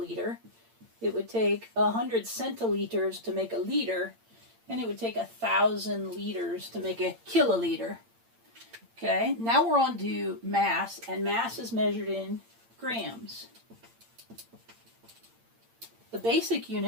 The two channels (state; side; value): late; left; 8.8 ms